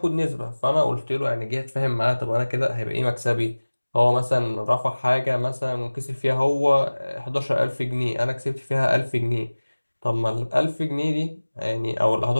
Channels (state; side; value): inverted; both; correlation -1.00